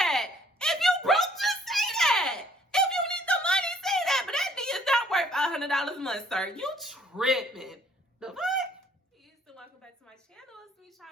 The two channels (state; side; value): normal; both; correlation 0.61